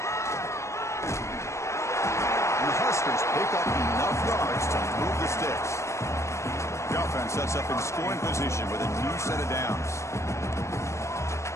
And the Huskers pick up enough yards to move the sticks. The offense sets up in scoring position with a new set of downs.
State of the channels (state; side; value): late; right; 0.14 ms